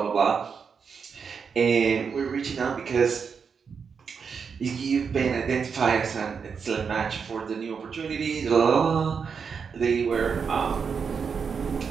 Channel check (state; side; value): quieter; left; 6.1 dB